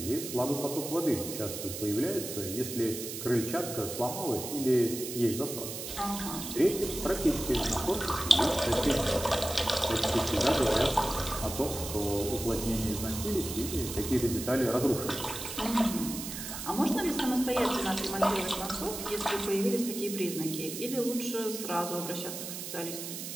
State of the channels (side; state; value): right; noise; hiss, 7 dB below the sound